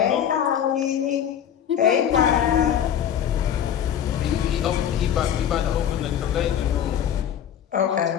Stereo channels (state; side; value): quieter; right; 9.3 dB